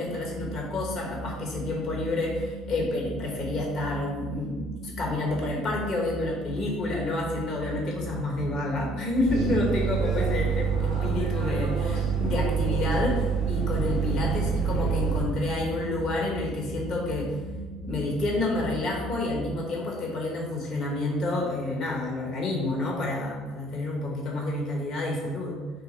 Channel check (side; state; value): both; normal; correlation 0.60